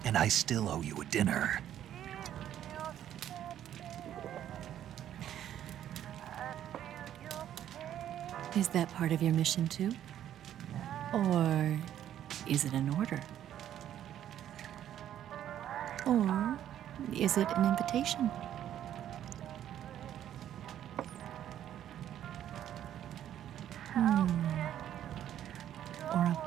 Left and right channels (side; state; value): left; quieter; 11.0 dB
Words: And I still owe you a dinner. Is that part of your mission too? Or is it an order? Or is it an invitation? Or a